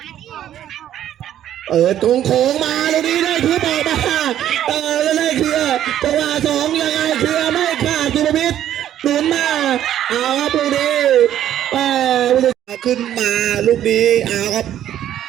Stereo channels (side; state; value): left; quieter; 11.4 dB